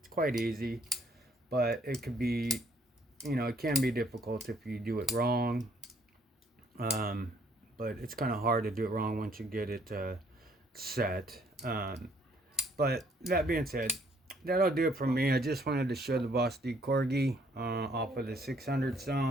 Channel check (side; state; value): both; normal; correlation 0.64